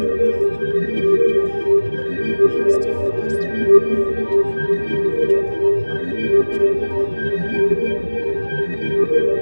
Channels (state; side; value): inverted; both; correlation -1.00